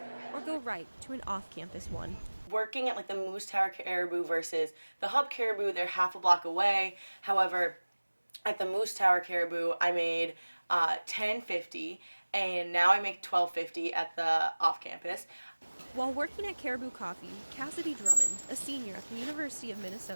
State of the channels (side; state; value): both; inverted; correlation -1.00